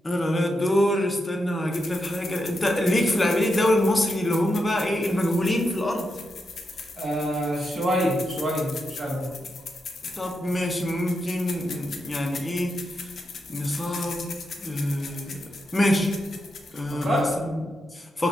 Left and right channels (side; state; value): both; normal; correlation 0.85